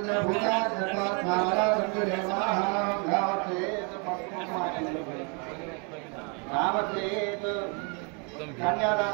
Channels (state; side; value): quieter; left; 34.6 dB